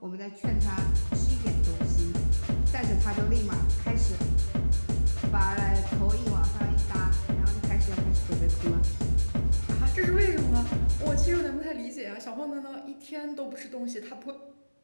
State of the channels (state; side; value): inverted; both; correlation -1.00